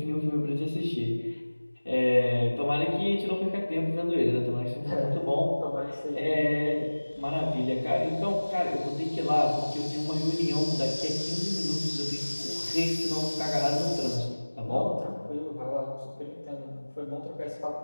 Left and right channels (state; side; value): inverted; both; correlation -1.00